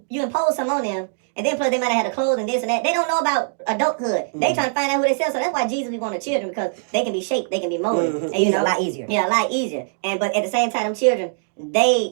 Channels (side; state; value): left; silent; digital silence